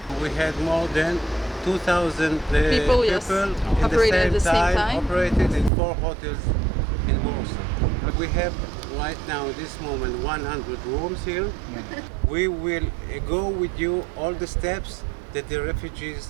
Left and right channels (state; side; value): drops out; left; at 5.7 s